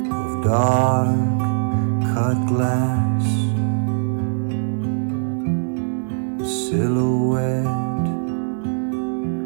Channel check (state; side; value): silent; left; digital silence